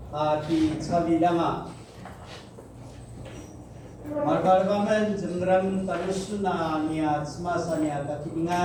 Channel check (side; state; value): both; identical; correlation 1.00